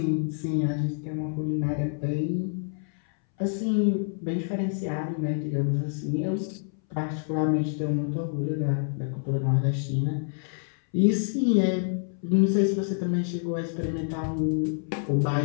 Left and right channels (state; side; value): silent; right; 59 dB below the other